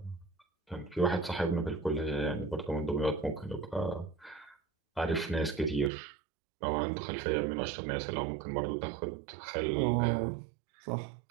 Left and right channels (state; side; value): drops out; left; at 5.9 s